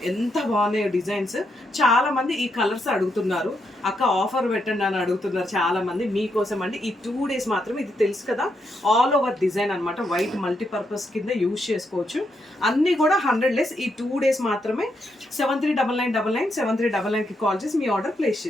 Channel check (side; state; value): both; normal; correlation 0.80